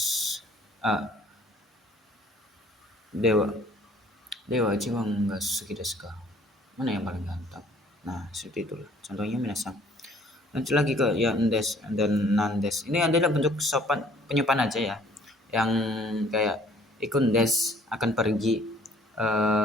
dewa dewa Ichiban ga suki desu ka. Mana yang paling ganteng? Nah, seperti itulah contohnya minasang. Lanjut lagi ke yang des dan nandes. Ini adalah bentuk sopan penyepan aja ya. Yang kayak ikun des akan pergi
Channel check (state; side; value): normal; both; correlation 0.57